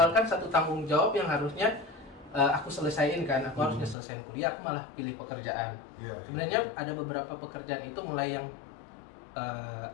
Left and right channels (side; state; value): right; drops out; at 4.0 s